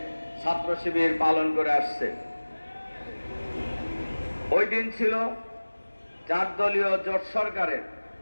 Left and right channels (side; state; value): both; inverted; correlation -1.00